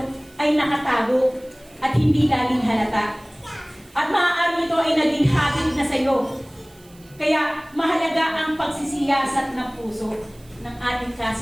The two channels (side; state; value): right; noise; hiss, 27 dB below the sound